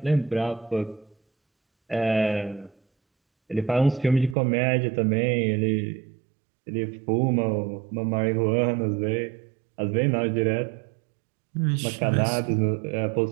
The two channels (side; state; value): left; drops out; at 4.4 s